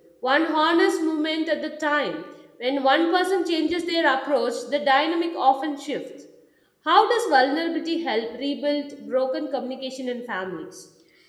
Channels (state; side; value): identical; both; correlation 1.00